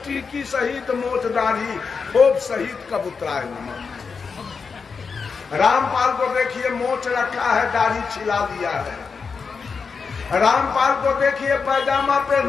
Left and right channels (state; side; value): quieter; right; 5.3 dB